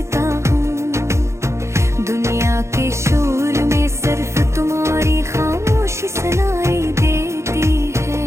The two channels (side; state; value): left; late; 0.14 ms